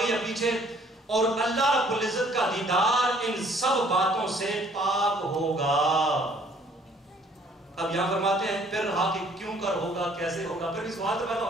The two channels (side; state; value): both; normal; correlation 0.60